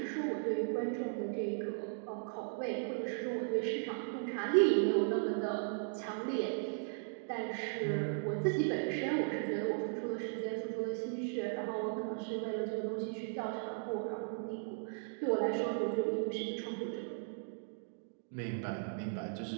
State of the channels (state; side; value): silent; left; digital silence